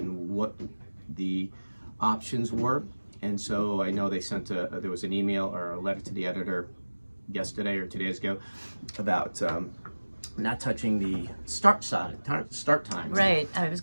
what the options were. And so I know they sent there was an email or a letter to the editor yesterday or 2 days ago about not touching the start time. Right. I was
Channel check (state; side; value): inverted; both; correlation -1.00